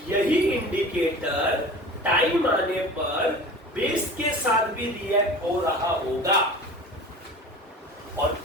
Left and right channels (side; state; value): both; normal; correlation 0.38